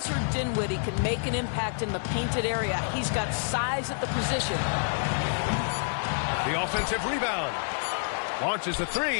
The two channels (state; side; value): silent; right; 59 dB below the other